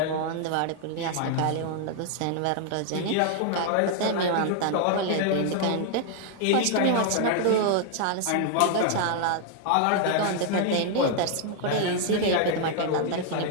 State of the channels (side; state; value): both; different; correlation 0.00